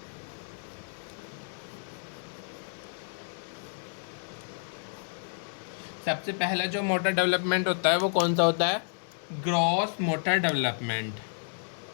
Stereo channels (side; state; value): right; silent; digital silence